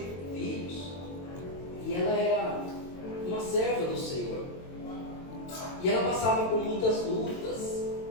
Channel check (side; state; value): right; late; 22 ms